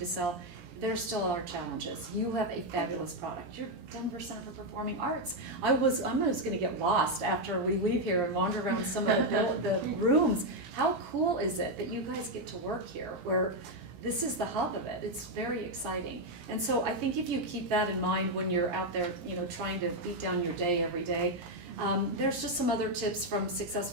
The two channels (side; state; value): left; late; 17 ms